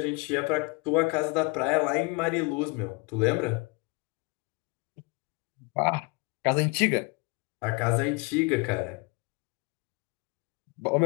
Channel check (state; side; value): quieter; right; 28.7 dB